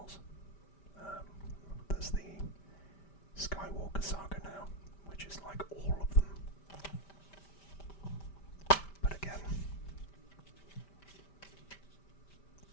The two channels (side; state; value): right; late; 5.1 ms